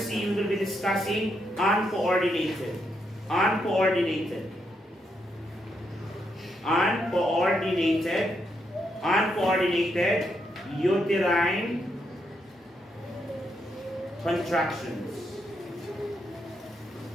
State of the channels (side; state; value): both; normal; correlation 0.79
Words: we will be discussing uncoordinated. Uncoordinated uterine contractions.